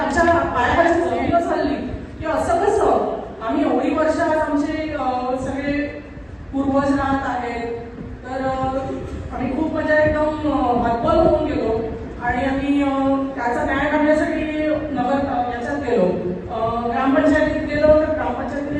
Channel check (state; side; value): identical; both; correlation 1.00